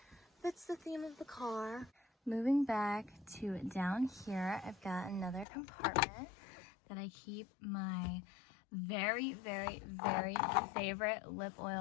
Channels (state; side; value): drops out; right; at 5.5 s